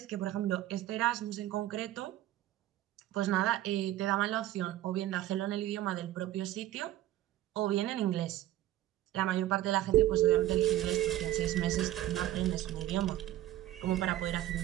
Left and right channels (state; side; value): quieter; left; 14.1 dB